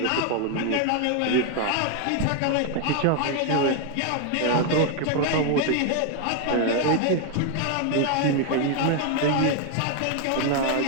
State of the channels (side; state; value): both; different; correlation 0.01